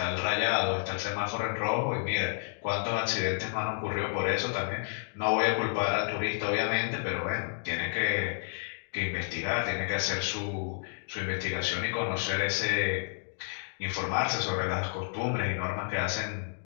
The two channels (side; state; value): right; silent; digital silence